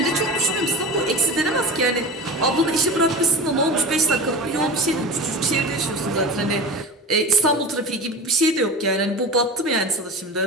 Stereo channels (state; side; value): normal; both; correlation 0.31